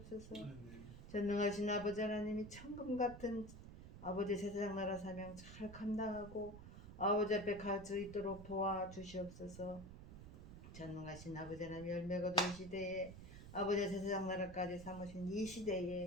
전능하신 아버지 하나님이 천금 같은 아버지 제사장 나라 사명 잘 감당하고 아버지 앞에 갈 수 있도록 도와주시옵소서. 전능하신 아버지 하나님 열매 거둔 시대에 아버지 제사장 나라까지 삼으신 이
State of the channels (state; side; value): noise; right; rumble, 13 dB below the sound